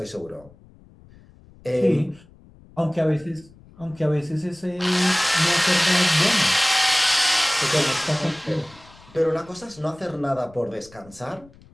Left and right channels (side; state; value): left; noise; rumble, 25 dB below the sound